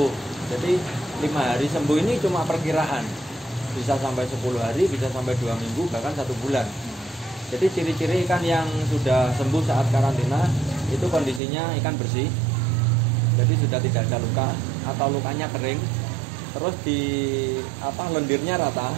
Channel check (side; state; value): left; drops out; at 11.4 s